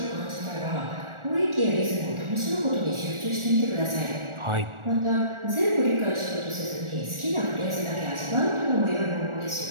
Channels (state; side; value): late; left; 1.4 ms